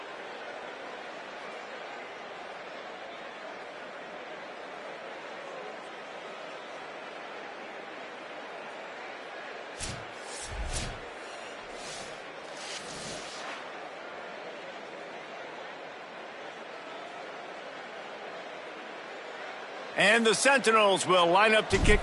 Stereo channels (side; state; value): both; identical; correlation 1.00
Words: And the Sentinels will line up to